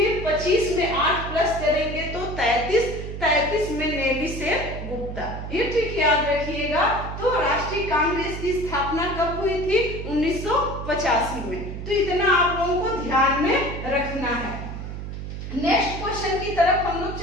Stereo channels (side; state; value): right; noise; hum, 7 dB below the sound